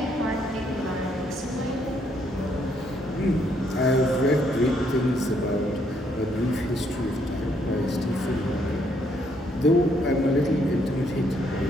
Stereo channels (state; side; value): normal; both; correlation 0.71